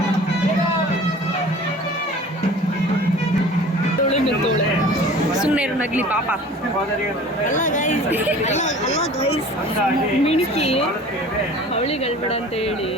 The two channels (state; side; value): normal; both; correlation 0.43